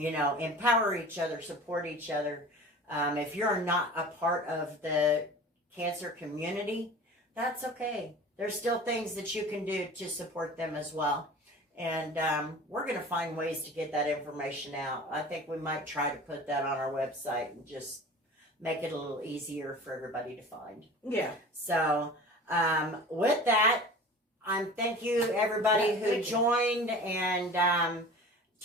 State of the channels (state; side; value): normal; both; correlation 0.39